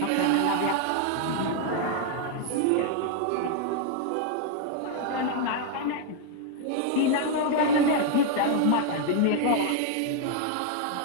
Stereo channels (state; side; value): different; both; correlation 0.00